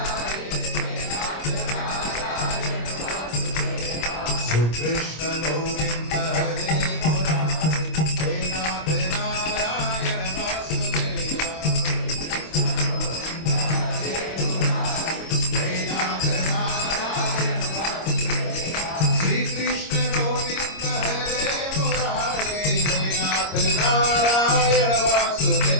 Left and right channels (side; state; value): right; late; 26 ms